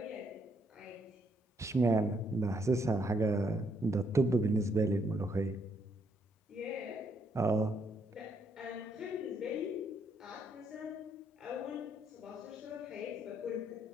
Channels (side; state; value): both; normal; correlation 0.73